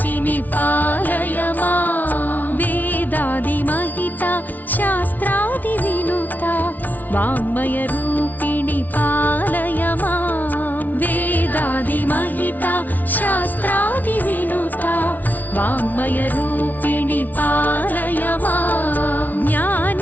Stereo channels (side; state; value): right; late; 0.080 ms